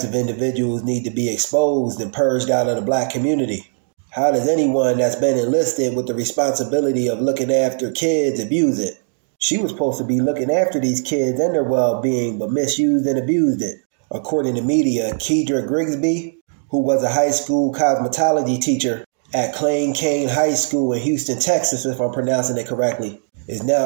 of individuals need to be exposed and purged out of the black community. How does anyone that's been enlisted with the responsibility of looking after kids abuse it? She was supposed to be looking after these kids and their well-being, but misused and abused it. According to media, Kedra Grigsby, who was a high school cosmetology teacher at Klein Cain High School in Houston, Texas, if I'm pronouncing it correctly, is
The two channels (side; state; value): left; silent; digital silence